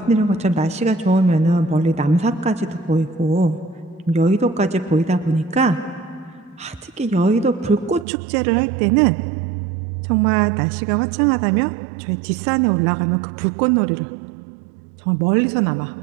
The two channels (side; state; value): left; drops out; at 8.1 s